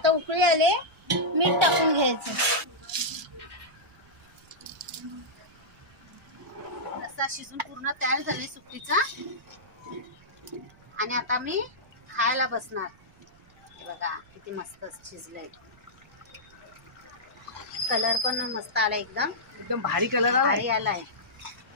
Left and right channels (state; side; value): noise; right; rumble, 27 dB below the sound